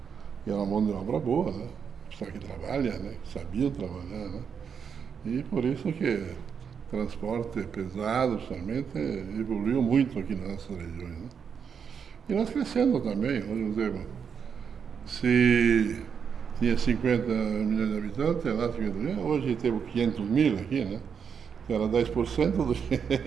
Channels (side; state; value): left; quieter; 6.9 dB